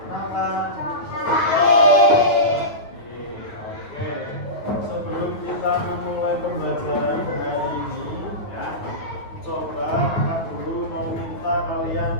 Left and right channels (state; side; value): late; right; 9.5 ms